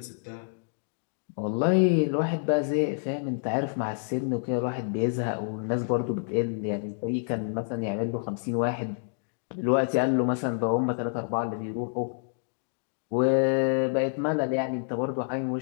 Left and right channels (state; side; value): silent; right; digital silence